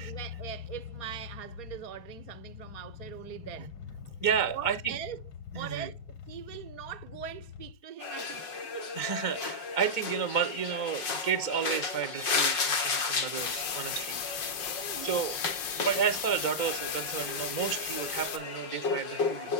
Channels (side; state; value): right; late; 5.5 ms